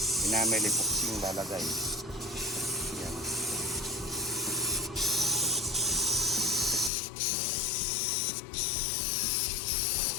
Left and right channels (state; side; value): drops out; right; at 6.9 s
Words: enamel epoxy yung lalagay. Yan.